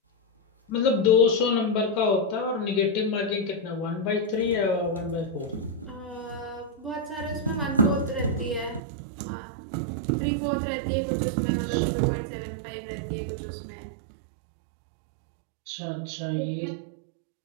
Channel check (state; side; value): drops out; left; at 8.8 s